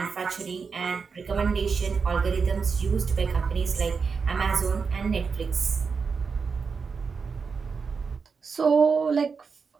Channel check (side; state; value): left; quieter; 5.3 dB